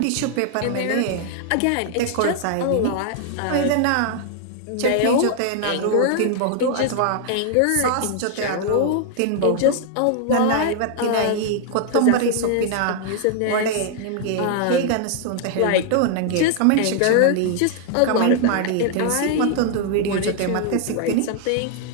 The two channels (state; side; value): different; both; correlation 0.00